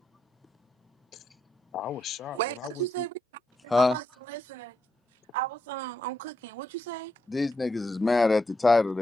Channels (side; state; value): both; normal; correlation 0.81